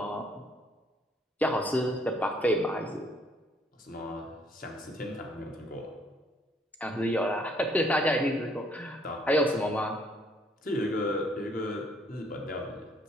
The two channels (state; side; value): normal; both; correlation 0.64